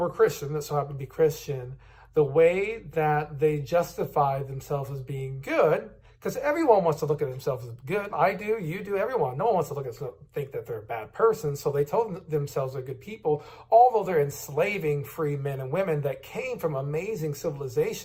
Christian, that so happened to be Christian, the way that they justified themselves as being good, because everyone wants to look at themselves as good. I do, you do, everyone. No one wants to look at think that they're a bad person. So they told themselves they're good people, although they're enslaving free men and women that came from amazing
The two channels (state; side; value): identical; both; correlation 1.00